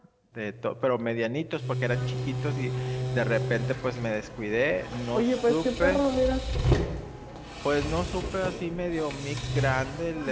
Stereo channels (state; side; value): identical; both; correlation 1.00